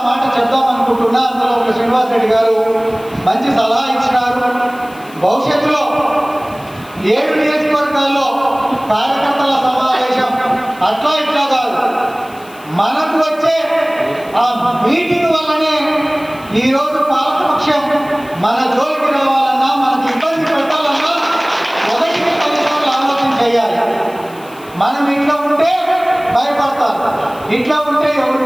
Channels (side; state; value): left; noise; hiss, 24 dB below the sound